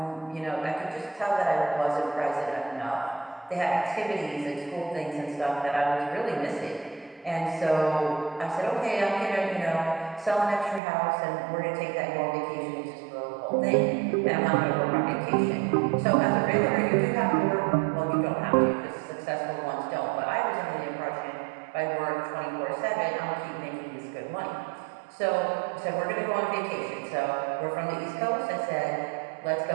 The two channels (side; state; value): left; drops out; at 10.8 s